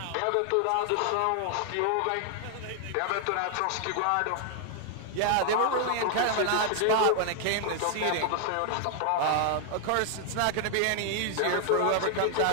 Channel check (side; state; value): both; different; correlation 0.00